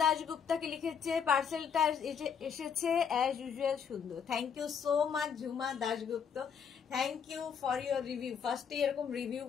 দাশগুপ্তাকে লিখেছে, পার্সেলটা এসেছে অ্যাজ ইউজুয়াল সুন্দর। Thank you so much Jhuma Dasgupta, thank you for your review. ফার্স্টে এরকম রিভিউ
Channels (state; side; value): quieter; right; 7.1 dB